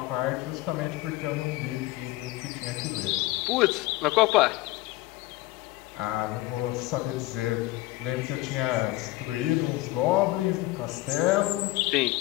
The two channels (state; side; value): quieter; right; 18.4 dB